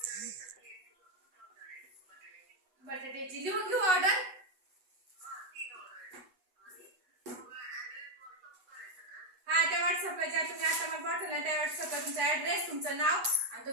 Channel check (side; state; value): left; late; 8.1 ms